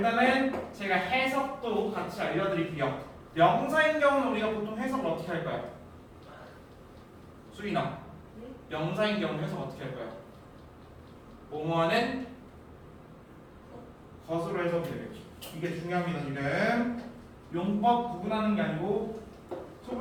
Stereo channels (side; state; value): both; identical; correlation 1.00